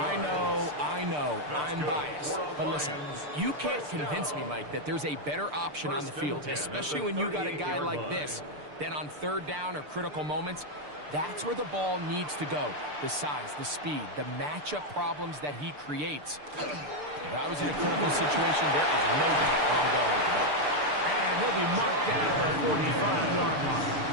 I know, I'm biased. But listen, you can't convince me, Mike, that there's a better option on the field, especially when you got a guy like this, than on 3rd down or critical moments. That's where the ball needs to go. The size, the speed, the matchup problems that he creates. If I was in a critical situation, there is no doubt where I'm going with the ball. And he'll be marked down at the 45-yard line.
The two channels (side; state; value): left; late; 6.7 ms